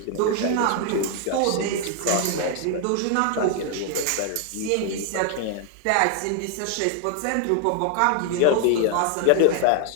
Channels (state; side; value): different; both; correlation 0.00